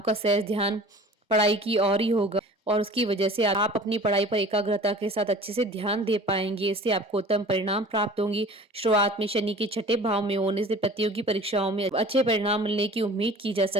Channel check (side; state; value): both; normal; correlation 0.43